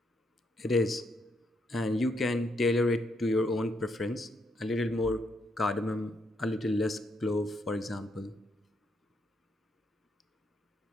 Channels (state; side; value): normal; both; correlation 0.76